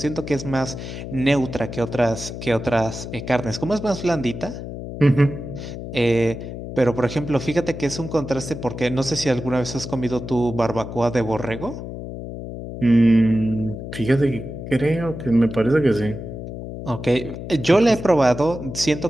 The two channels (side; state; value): left; noise; hum, 9 dB below the sound